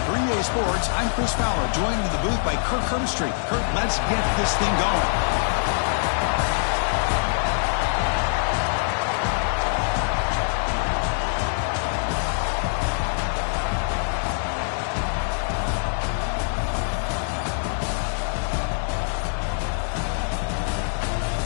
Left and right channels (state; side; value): silent; right; 63 dB below the other